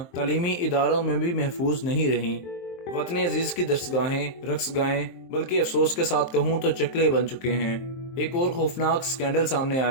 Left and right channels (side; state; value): right; late; 23 ms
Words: तालीमी इदारों में भी महफूज नहीं रहीं। वतन अजीज की दरसगाहें, रक्सगाहें, बल्कि अफसोस के साथ कहूँ तो चकले बन चुके हैं। एक और खौफनाक स्कैंडल सामने